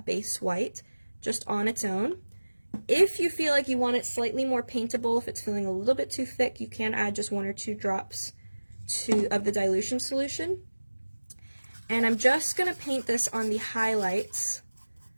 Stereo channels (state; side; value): inverted; both; correlation -1.00